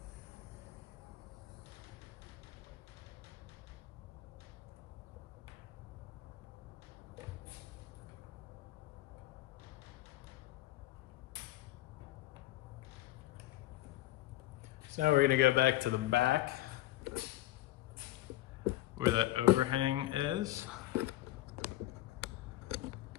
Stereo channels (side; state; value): right; quieter; 16.0 dB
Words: So now we're gonna go back to the back where that overhang is.